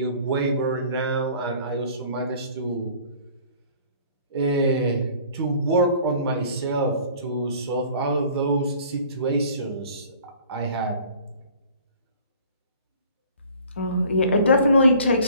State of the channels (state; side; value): inverted; both; correlation -0.50